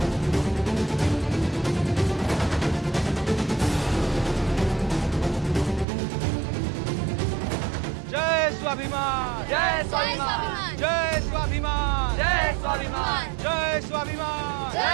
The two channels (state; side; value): drops out; left; at 5.9 s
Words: जय स्वाभिमान, जय स्वाभिमान, जय स्वाभिमान, जय स्वाभिमान, जय स्वाभिमान,